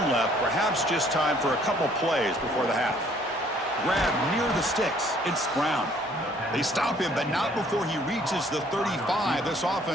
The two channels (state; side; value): normal; both; correlation 0.60